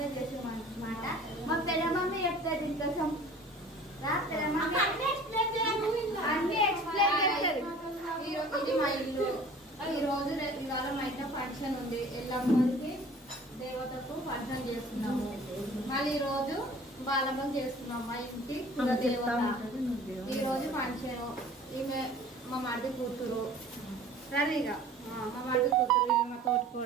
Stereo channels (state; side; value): normal; both; correlation 0.46